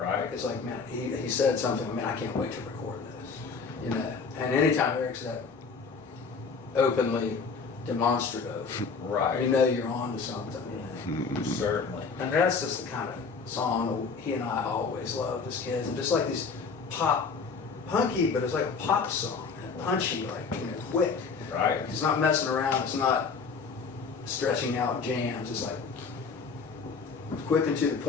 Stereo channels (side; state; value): right; quieter; 5.1 dB